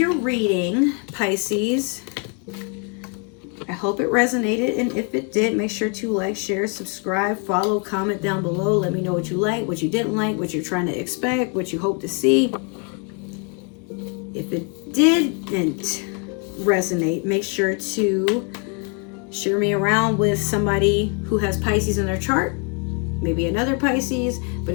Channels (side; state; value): right; quieter; 35.7 dB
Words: reading, Pisces. I hope it resonated, and if it did, make sure to like, share, subscribe, follow, comment down below. Let me know what you like, what you didn't like, what you're trying to expect, what you hope to see. If it didn't resonate, make sure to share me around with somebody who has Pisces in their chart, maybe another Pisces. But